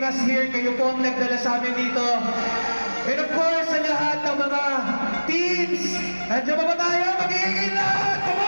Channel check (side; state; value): both; inverted; correlation -1.00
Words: us here. Kayo po ang nagdala sa amin dito. And of course, sa lahat ng mga teams, nandiyan ba tayo? Mag-iingay lahat! Come